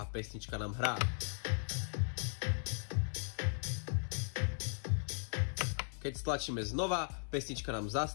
pesnička nám hrá. Keď stlačíme znova, pesnička nám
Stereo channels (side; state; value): right; silent; 53 dB below the other